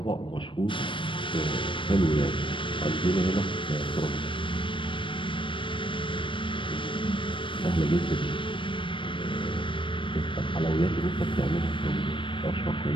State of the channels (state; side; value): late; right; 0.25 ms